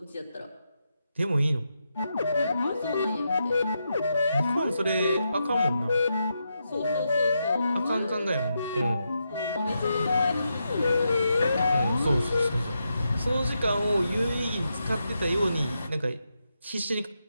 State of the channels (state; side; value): inverted; both; correlation -0.85